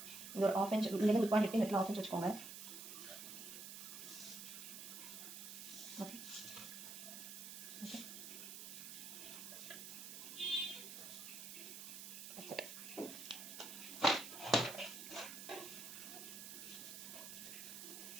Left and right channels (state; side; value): noise; right; hiss, 9 dB below the sound